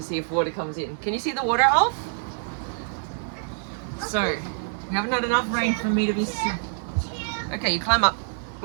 see if water comes in. Can you see the water, Alf? So, we haven't had enough rain for me to be... Okay, you climb up.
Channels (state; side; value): silent; left; 58 dB below the other